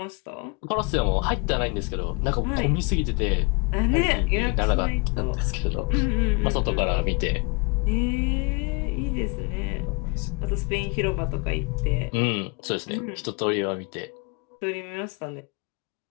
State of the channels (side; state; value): right; quieter; 30.0 dB